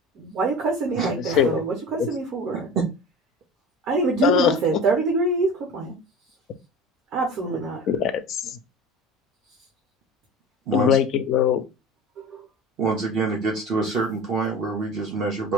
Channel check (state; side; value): normal; both; correlation 0.35